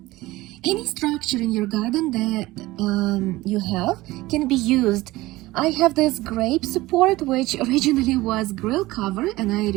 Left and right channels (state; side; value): quieter; left; 18.7 dB